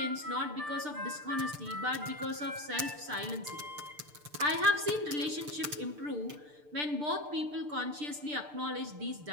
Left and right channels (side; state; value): left; late; 6.7 ms